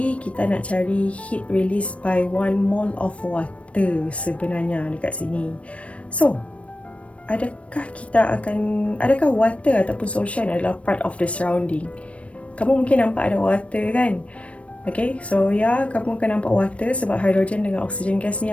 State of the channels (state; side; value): late; right; 0.063 ms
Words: kita nak cari heat release by 1 mole of water sebenarnya dekat sini. So, adakah water ataupun solution adalah part of the surrounding? Kamu mungkin nampak ada water kan? Okay, so kamu akan nampak water sebab hydrogen dengan oxygen gas